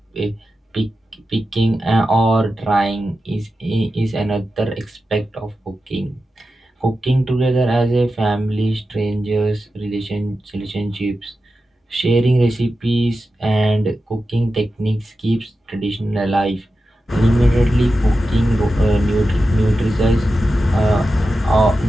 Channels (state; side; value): normal; both; correlation 0.92